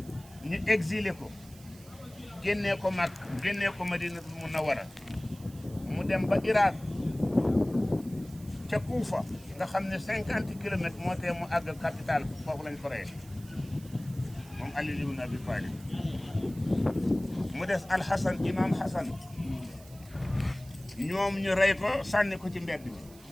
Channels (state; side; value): noise; right; hiss, 22 dB below the sound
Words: ñu exilé ko génnee ko Makka génnee ko Madinatul Munawwara mu dem ba Irak ca Kuufa nga xam ne 50 kilomètres moo tee mu àgg capitale foofu lañ ko rey moom Ali ibn Abi Talib mu des Alxasan imam Xasan ñoom ñu rey ko sànni ko ci mbedd mi